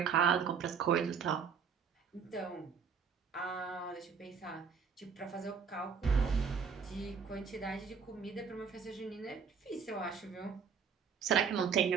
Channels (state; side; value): quieter; left; 6.3 dB